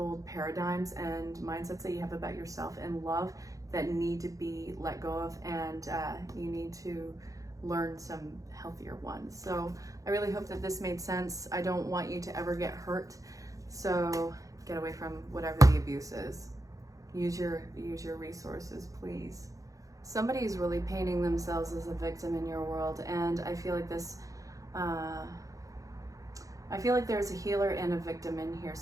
paradigms and mindsets that you have about yourself and love that need to be let go of, and you need to learn some healthier ones. So I really hope that this made sense. I don't want you to ever get hurt, so get away from whatever the abuse is. Use your resources, please. Somebody's really painting themselves as a victim in your world, and I feel like this I feel like there's a healer and a victim in here.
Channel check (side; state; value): left; late; 0.16 ms